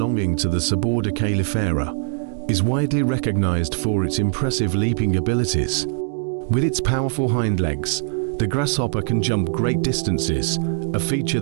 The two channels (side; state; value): left; silent; digital silence